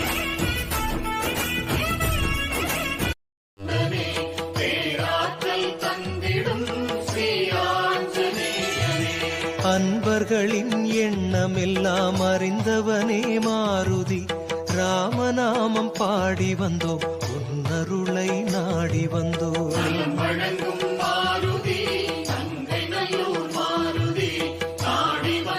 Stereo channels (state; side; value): identical; both; correlation 1.00